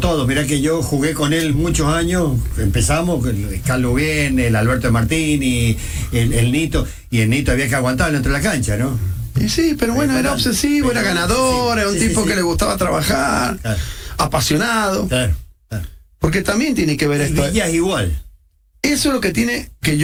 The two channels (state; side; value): identical; both; correlation 1.00